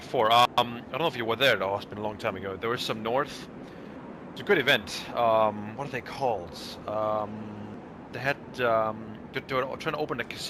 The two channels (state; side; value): identical; both; correlation 1.00